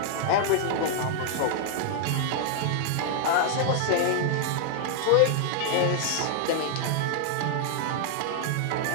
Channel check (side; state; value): both; different; correlation 0.00